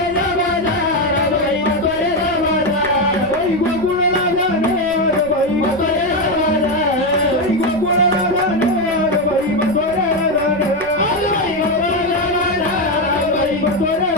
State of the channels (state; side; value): noise; right; rumble, 18 dB below the sound